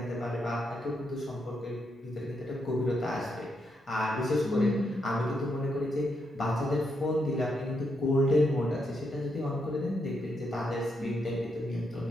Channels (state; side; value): normal; both; correlation 0.80